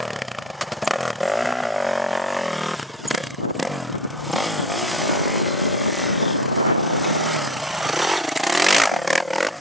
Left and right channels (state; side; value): normal; both; correlation 0.35